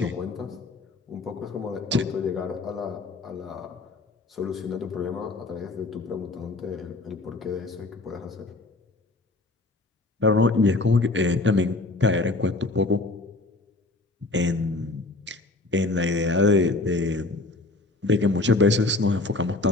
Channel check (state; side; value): quieter; right; 3.1 dB